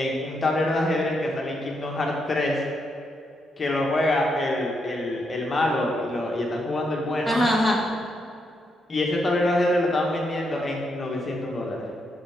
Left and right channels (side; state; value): both; normal; correlation 0.80